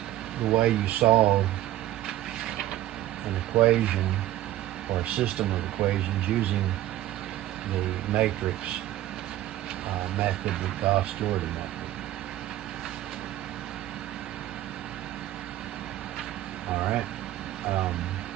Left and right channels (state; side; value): quieter; left; 14.4 dB